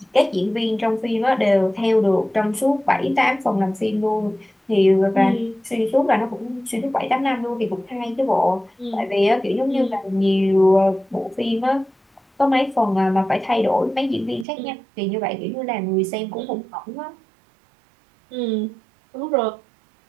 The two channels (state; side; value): drops out; left; at 14.5 s